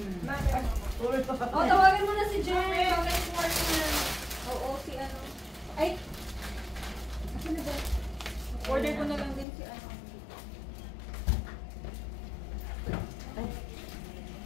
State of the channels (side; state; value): right; drops out; at 9.5 s